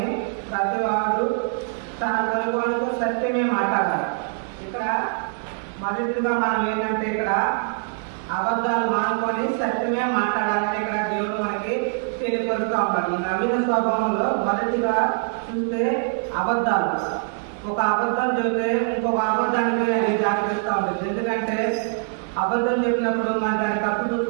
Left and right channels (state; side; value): silent; left; 63 dB below the other